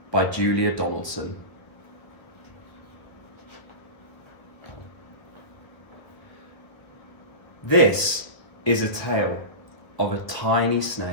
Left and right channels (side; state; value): right; late; 1.0 ms